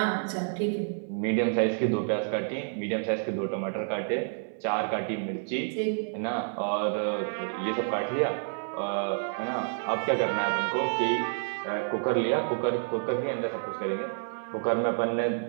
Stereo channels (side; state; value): left; silent; 58 dB below the other